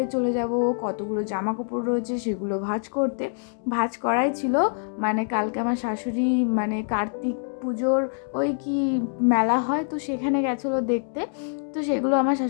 চলে যাব, কতগুলো জামা কাপড় রয়েছে সেগুলো ভাঁজ করতে। ভাঁজ করাই ছিল, মানে কালকে আমার শাশুড়ি মানে কার্তিক পুজোর ওই কি মেলা হয়, তো সেখানে গেছিলো দেখতে। তো সেগুলো আমার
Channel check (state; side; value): silent; right; digital silence